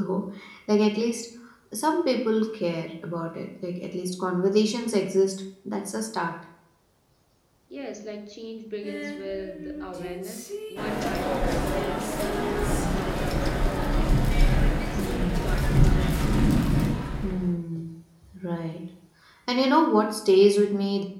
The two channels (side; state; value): both; identical; correlation 1.00